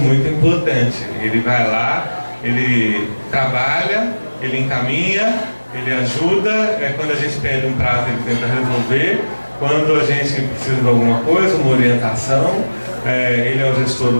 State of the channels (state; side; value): inverted; both; correlation -1.00